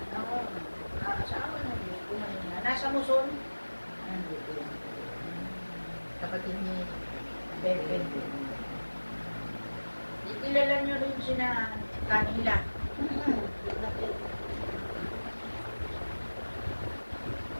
Ako, asawa na Diyos ko na niya. Nasa Muson. Kapatid ni Pepe. Kilala niyo rin sina Kanila.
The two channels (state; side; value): inverted; both; correlation -1.00